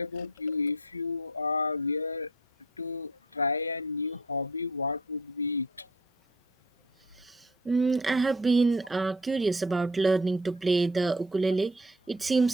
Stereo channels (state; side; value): normal; both; correlation 0.48